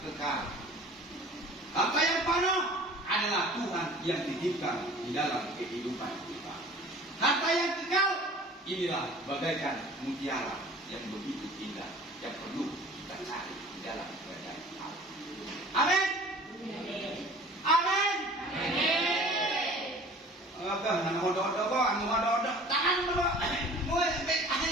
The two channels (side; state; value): both; normal; correlation 0.46